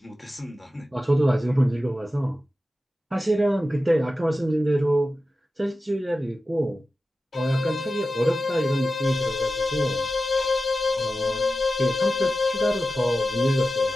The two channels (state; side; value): normal; both; correlation 0.93